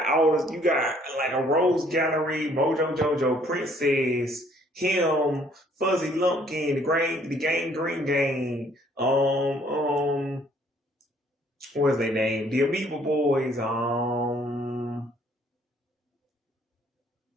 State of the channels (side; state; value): both; normal; correlation 0.62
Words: like a Rose Gallery, Mojo Jojo, Princess, him, Fuzzy Lumpkin, the Green Gang, what's their name? The Amoeba Boys, I